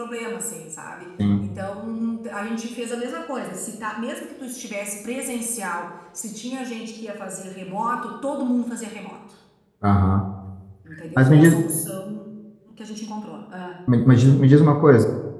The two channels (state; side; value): identical; both; correlation 1.00